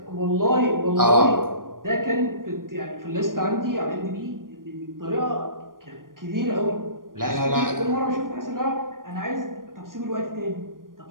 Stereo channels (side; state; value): left; late; 0.91 ms